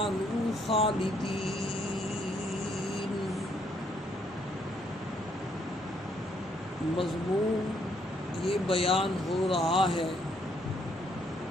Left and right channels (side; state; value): both; normal; correlation 0.70